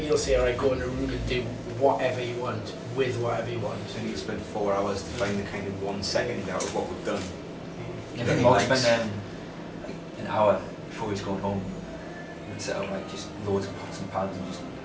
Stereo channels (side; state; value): both; identical; correlation 1.00